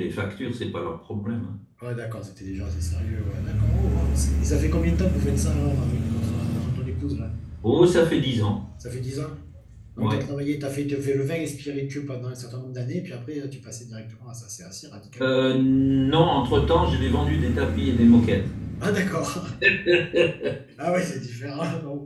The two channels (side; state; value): both; identical; correlation 1.00